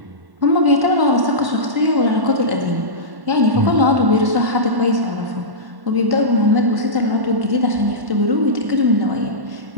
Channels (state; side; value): late; left; 1.1 ms